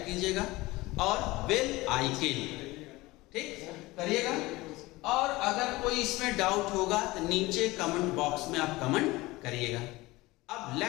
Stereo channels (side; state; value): right; quieter; 20.5 dB